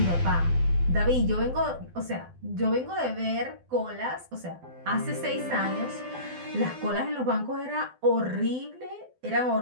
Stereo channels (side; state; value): left; late; 12 ms